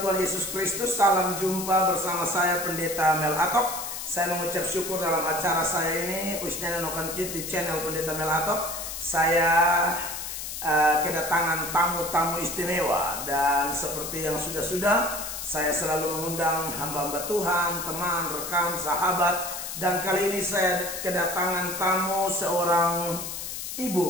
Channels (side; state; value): left; noise; hiss, 7 dB below the sound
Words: Tuhan Yesus Kristus. Salam jumpa bersama saya Pendeta Mel Atok. Saya mengucap syukur dalam acara saya ini Usnana Nokan Kid di channel Pendeta Mel Atok. Saya kedatangan tamu-tamu istimewa. Dan seperti yang sudah-sudah, saya selalu mengundang hamba-hamba Tuhan, teman, rekan, sahabat. Dan kali ini saya kedatangan tamu seorang